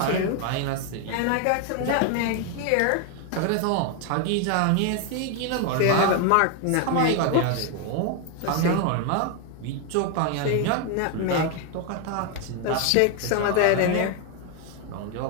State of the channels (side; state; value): both; different; correlation 0.01